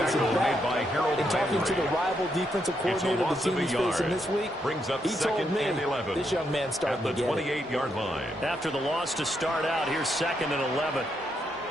In talking to the rival defensive coordinator the team is facing this week, he told me this young man's starting to get it. At the 28-yard line. After the loss to start out, here's 2nd and 11.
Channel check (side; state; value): both; normal; correlation 0.79